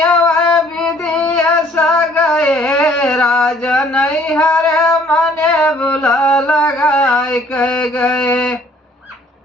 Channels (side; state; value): both; normal; correlation 0.59